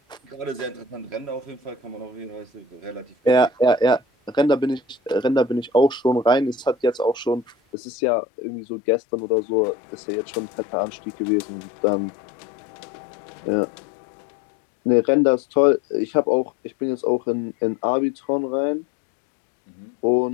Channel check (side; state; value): right; drops out; at 7.6 s